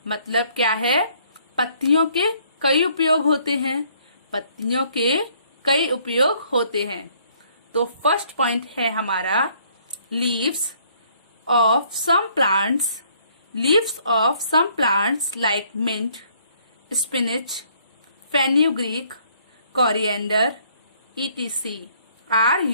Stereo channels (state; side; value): inverted; both; correlation -0.64